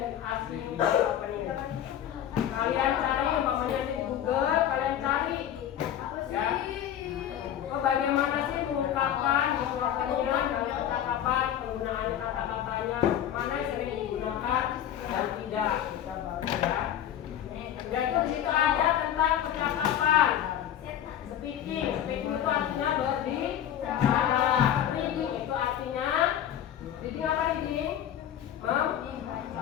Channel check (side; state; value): right; quieter; 10.6 dB